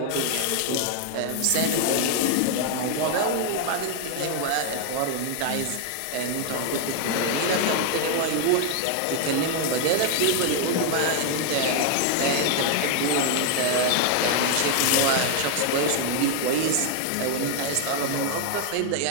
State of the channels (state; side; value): different; both; correlation 0.00